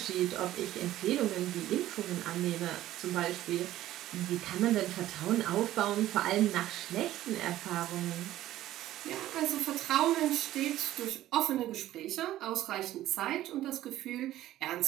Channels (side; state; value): left; quieter; 14.1 dB